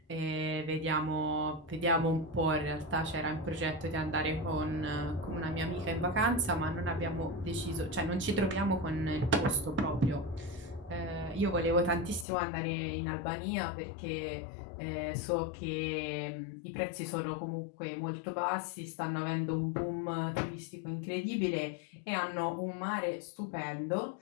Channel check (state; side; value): drops out; right; at 12.2 s